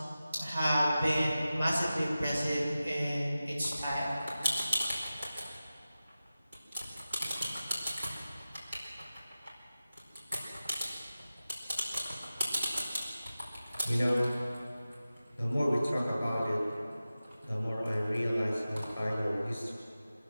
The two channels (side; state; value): both; inverted; correlation -0.95